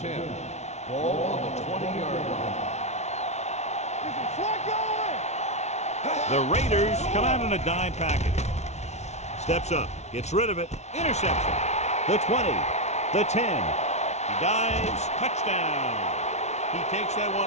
Ball on the 20-yard line. The Raiders come out in a dime package. Steps up, gets rid of it, interception. The 20, the 10. He dives, touchdown. He takes that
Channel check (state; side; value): late; right; 0.32 ms